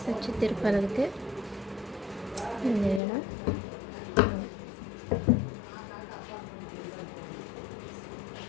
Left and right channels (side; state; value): right; drops out; at 3.0 s